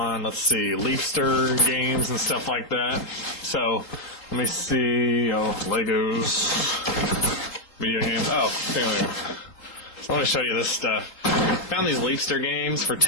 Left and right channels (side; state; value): right; late; 3.7 ms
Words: let's see, Leafster games and stuff like that. So let me see. Oh, Legos, video games. Oh, here we go. So let me show you this stuff. Found these Leafster games for